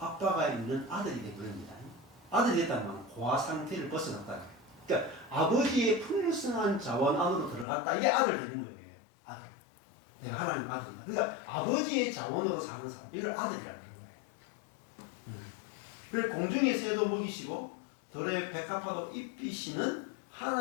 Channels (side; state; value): right; drops out; at 7.7 s